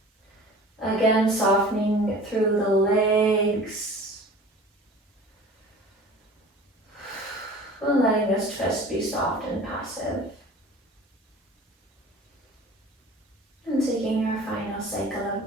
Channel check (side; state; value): both; normal; correlation 0.42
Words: Again, softening through the legs. And letting this twist be soft and passive. And taking our final cycle